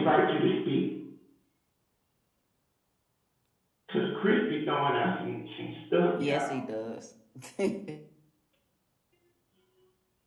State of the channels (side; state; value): both; identical; correlation 1.00